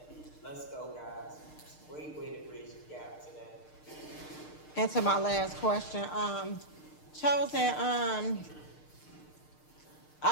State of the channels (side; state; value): right; late; 6.6 ms